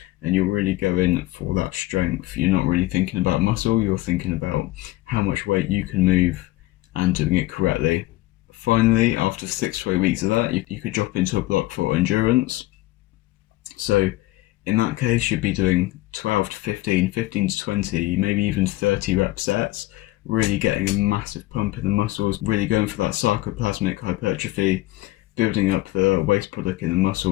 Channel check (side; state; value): right; quieter; 18.0 dB